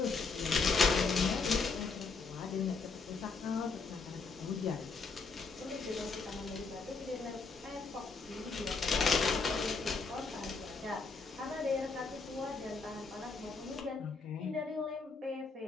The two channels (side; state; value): right; quieter; 4.5 dB